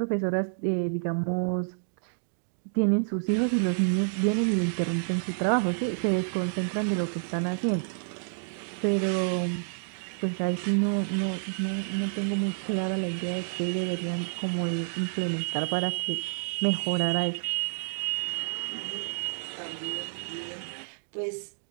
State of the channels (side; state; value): left; silent; digital silence